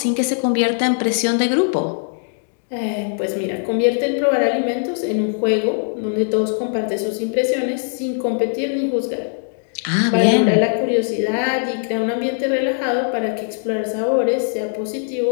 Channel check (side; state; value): right; silent; digital silence